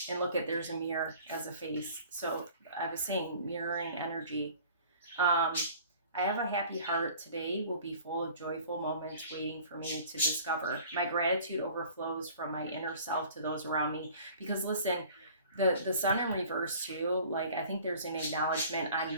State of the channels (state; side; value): inverted; both; correlation -0.48